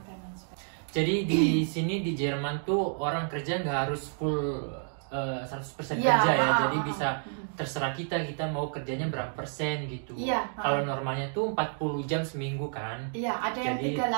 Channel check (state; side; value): silent; left; 56 dB below the other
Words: dan jadi di sini di Jerman tuh orang kerja nggak harus full 100% kerja ya. Jadi bisa terserah kita mau kerjanya berapa persen gitu. Kalau normalnya tuh 40 jam seminggu kan. Iya, ada yang